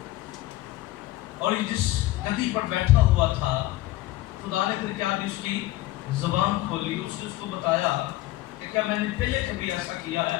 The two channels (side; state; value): right; quieter; 17.0 dB